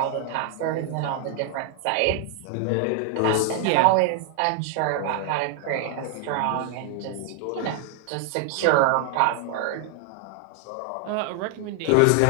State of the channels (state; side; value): different; both; correlation 0.00